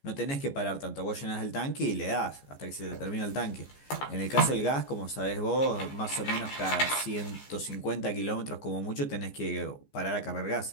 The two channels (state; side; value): late; right; 14 ms